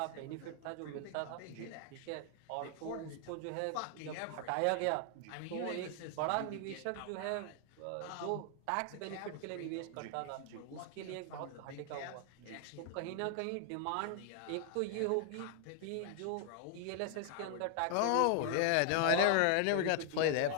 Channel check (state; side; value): different; both; correlation 0.00